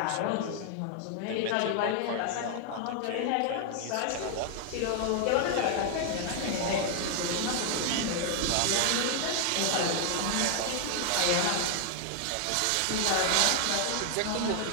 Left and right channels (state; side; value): different; both; correlation 0.00